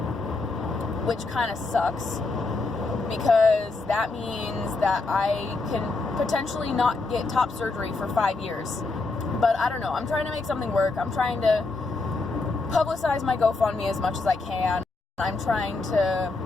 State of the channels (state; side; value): quieter; right; 3.6 dB